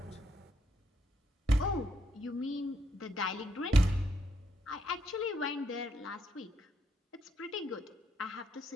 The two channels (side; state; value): both; normal; correlation 0.76